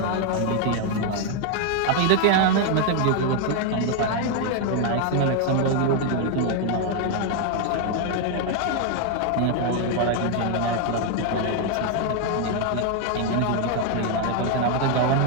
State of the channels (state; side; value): different; both; correlation 0.00